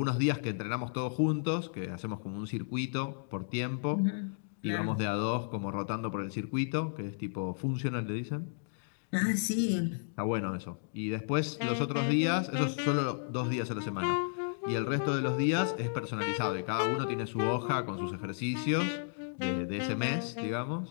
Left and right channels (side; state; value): right; silent; digital silence